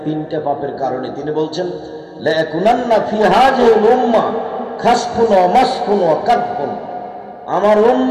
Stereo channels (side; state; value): both; identical; correlation 1.00